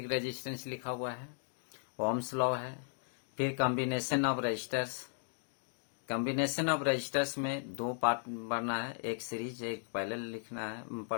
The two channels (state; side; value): silent; right; digital silence